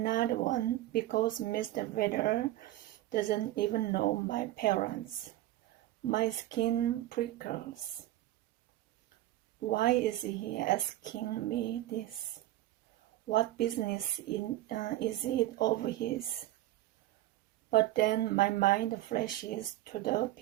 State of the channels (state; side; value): quieter; left; 15.2 dB